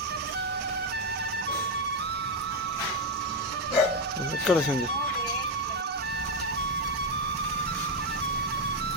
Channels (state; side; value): normal; both; correlation 0.06